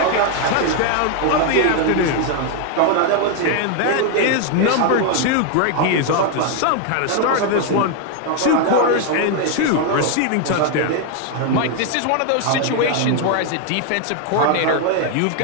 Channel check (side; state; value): both; different; correlation 0.00